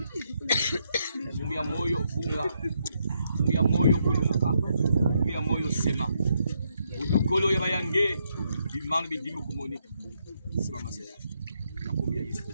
Funga moyo funga, funga moyo kulumuka, funga moyo sema. Udukolo ya bayange, bimang bidimu kumonika. Sema masaya. Nakumbia Yesu.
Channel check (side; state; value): both; inverted; correlation -0.77